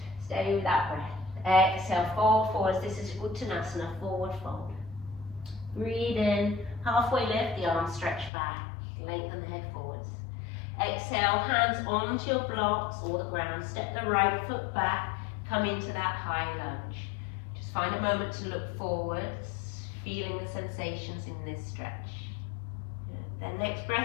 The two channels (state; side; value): drops out; right; at 8.3 s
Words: Steady with that breath. Exhale, fold forwards. This is Uttanasana, forward fold. Breathe in, halfway lift, the arms stretch back. Lengthen the head forwards. Exhale, hands onto your blocks or the ground. Step the right foot back. Come into that high lunge. Just find a moment to look forwards, feeling the sensations in this stretch. Good. Then next